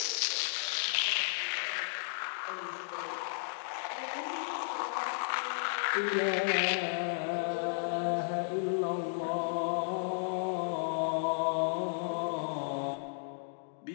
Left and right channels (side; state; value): right; silent; digital silence